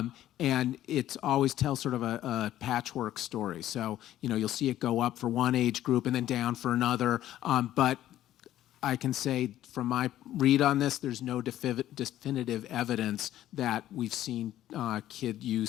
it always tells sort of a patchwork story. So, you'll see it go up for one age group and then down for another. But I can say from my read on this, there's no definitive evidence that we've seen kid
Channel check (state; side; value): quieter; right; 13.0 dB